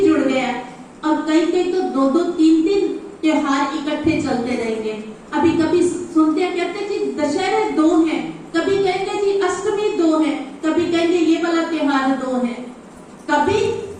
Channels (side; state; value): both; identical; correlation 1.00